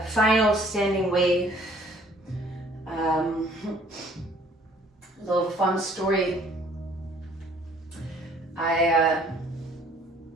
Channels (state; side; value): normal; both; correlation 0.58